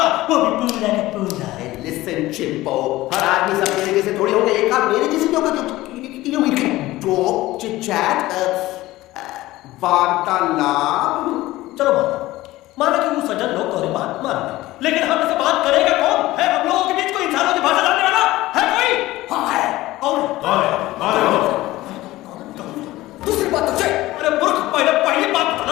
वो भी पूरा का पूरा। लिसन चिंपो, हर आदमी सब मेरे जैसे थोड़ी होंगे, एक आप मेरे जैसे होगा जो टॉक चिट-चैट वार्तालाप। चलो माना कि वो सज्जन लोग तुम्हारी बात मान लेंगे, लेकिन हम ऐसे बात करेगा कौन? है हम लोगों के बीच कोई इंसानों की भाषा जानने वाला है कोई? हाँ है। कौन? दूसरी बात तो अरे मूर्ख, पहली बात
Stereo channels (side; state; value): right; quieter; 17.5 dB